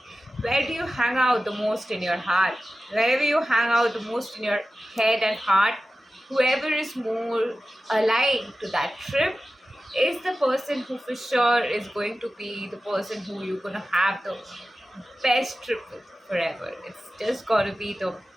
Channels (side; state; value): both; normal; correlation 0.94